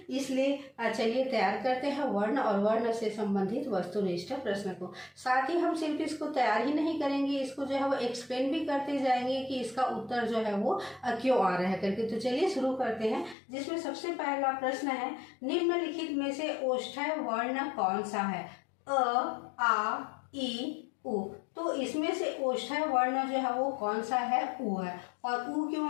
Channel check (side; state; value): right; drops out; at 13.4 s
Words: इसलिए चलिए तैयार करते हैं वर्ण और वर्ण से संबंधित वस्तुनिष्ठ प्रश्न को। साथ ही हम सिर्फ इसको तैयार ही नहीं करेंगे, इसको जो है वो एक्सप्लेन भी करते जाएंगे कि इसका उत्तर जो है वो क्यों आ रहा है करके। तो चलिए शुरू करते हैं, जिसमें सबसे पहला प्रश्न है, निम्नलिखित में से ओष्ठ्य वर्ण कौन सा है? अ, आ, ई, उ। तो इसमें से ओष्ठ्य वर्ण जो है वो कौन सा है? उ है। और उ क्यों